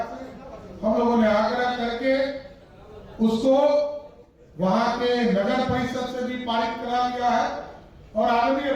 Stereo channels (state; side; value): identical; both; correlation 1.00